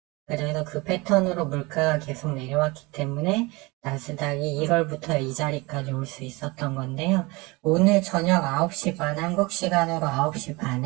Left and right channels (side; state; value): left; quieter; 24.5 dB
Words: 그래서 그 패턴으로 물가가 계속 내려왔기 때문에 나스닥이 1월부터 이 자리까지 올 수 있었던 건데요. 오늘 저녁 9시 반, 한국 시간으로 9시